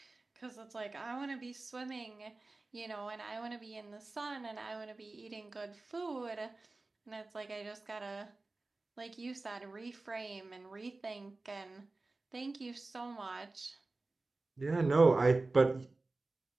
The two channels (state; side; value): quieter; left; 3.3 dB